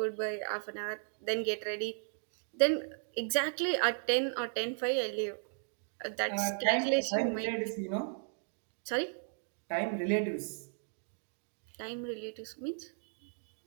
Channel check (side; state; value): left; silent; digital silence